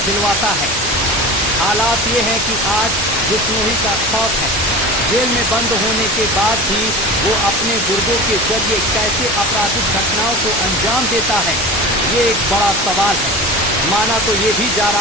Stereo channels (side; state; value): both; normal; correlation 0.33